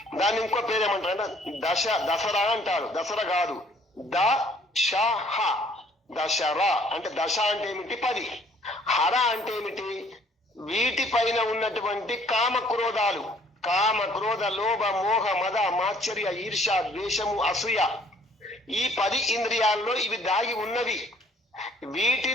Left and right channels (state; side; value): normal; both; correlation 0.59